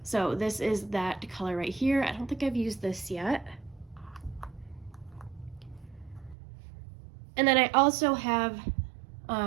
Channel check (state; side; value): drops out; left; at 6.4 s